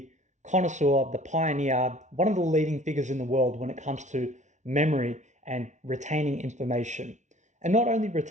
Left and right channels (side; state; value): left; late; 0.35 ms